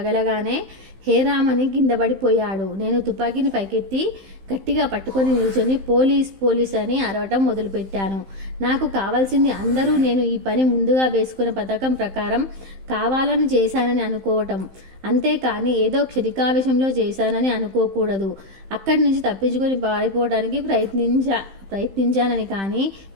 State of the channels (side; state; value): left; late; 15 ms